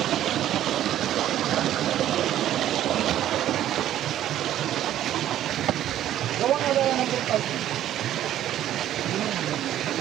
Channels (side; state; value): left; quieter; 12.1 dB